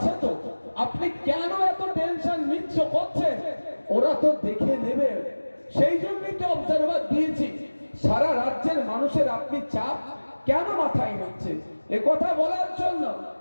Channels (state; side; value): inverted; both; correlation -1.00